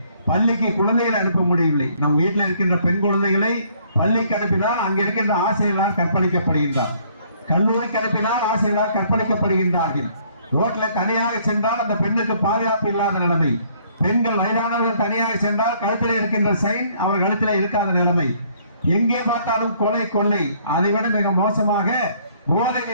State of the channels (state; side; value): inverted; both; correlation -0.63